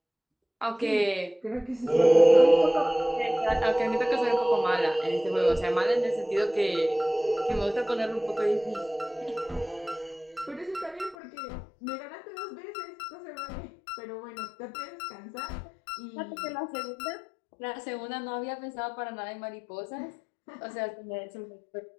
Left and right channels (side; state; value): right; drops out; at 11.2 s